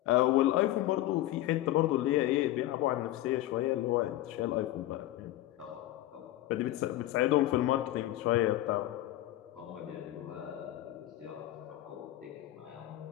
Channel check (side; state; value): right; quieter; 15.2 dB